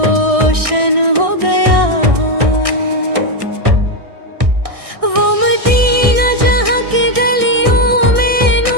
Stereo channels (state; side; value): late; left; 1.6 ms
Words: हो गया। वो मदीना जहाँ की गलियों में